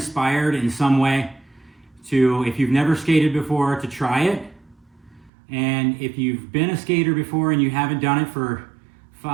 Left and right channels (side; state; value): left; drops out; at 5.3 s